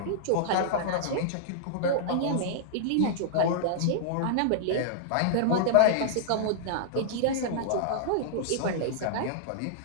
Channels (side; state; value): both; different; correlation -0.02